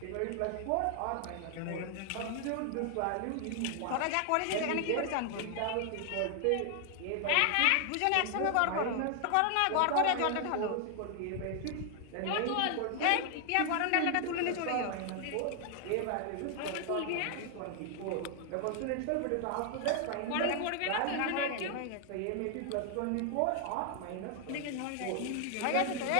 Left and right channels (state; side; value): different; both; correlation 0.00